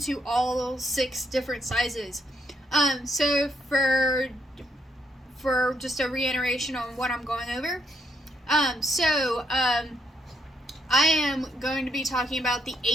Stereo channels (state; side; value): normal; both; correlation 0.74